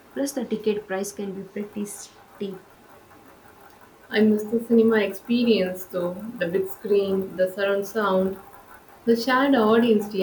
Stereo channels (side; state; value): both; identical; correlation 1.00